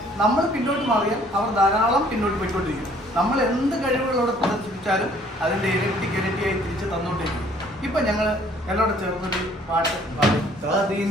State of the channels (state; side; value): normal; both; correlation 0.59